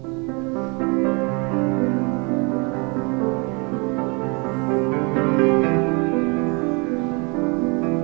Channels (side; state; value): left; quieter; 31.0 dB